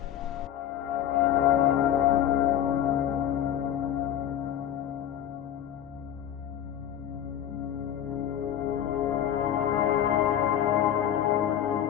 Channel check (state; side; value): quieter; right; 10.5 dB